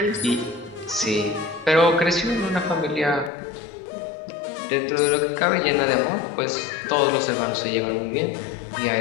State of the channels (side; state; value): right; drops out; at 3.3 s